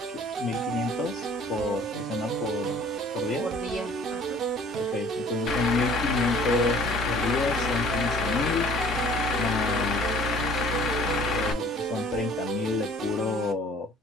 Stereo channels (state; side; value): normal; both; correlation 0.52